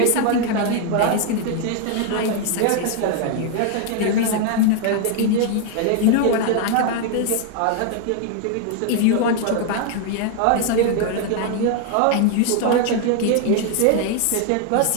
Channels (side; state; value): both; different; correlation 0.00